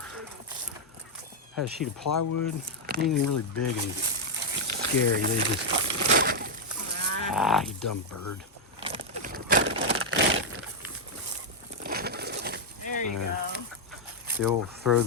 had a sheet of plywood. Anything really big and scary, they just, you dumb bird. There you go. The old throw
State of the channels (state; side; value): normal; both; correlation -0.01